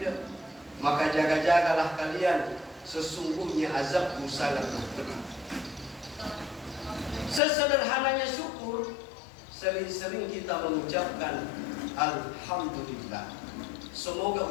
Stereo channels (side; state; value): right; drops out; at 7.4 s